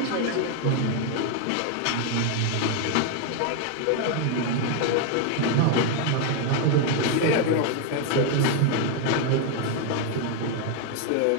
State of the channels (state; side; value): different; both; correlation 0.01